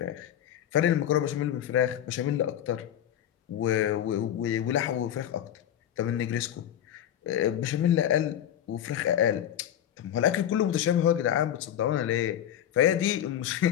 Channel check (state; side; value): quieter; right; 10.6 dB